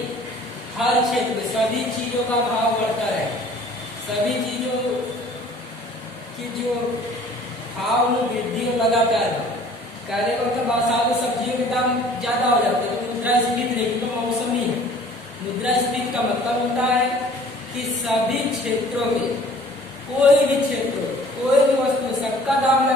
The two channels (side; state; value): both; normal; correlation 0.51